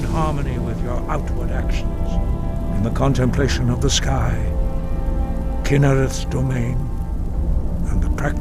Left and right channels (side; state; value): both; identical; correlation 1.00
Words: harmony with your outward actions. In the contemplation of the sky, Kynareth's domain, and the